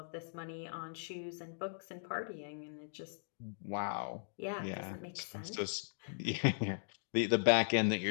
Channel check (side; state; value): right; silent; digital silence